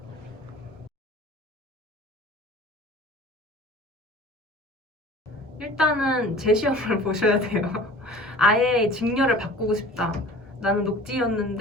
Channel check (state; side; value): normal; both; correlation 0.43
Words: 일단은 제 시험을 보셔야 돼요. 아예 직렬을 바꾸고 싶다. 나는